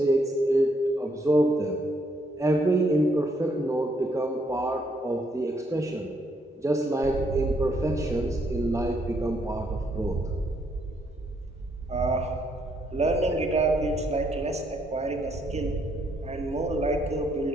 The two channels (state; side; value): normal; both; correlation 0.73